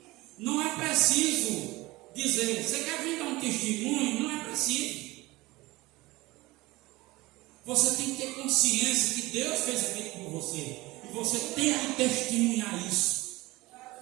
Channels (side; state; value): left; quieter; 20.5 dB